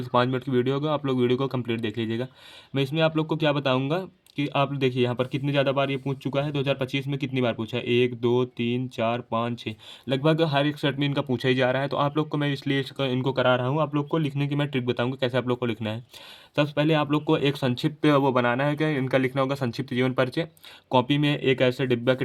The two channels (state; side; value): identical; both; correlation 1.00